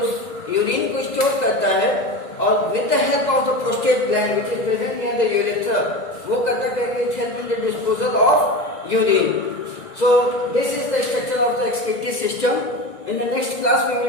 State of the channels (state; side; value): late; right; 1.9 ms